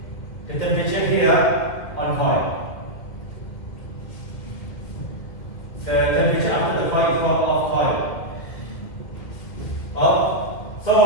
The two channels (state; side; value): late; right; 1.8 ms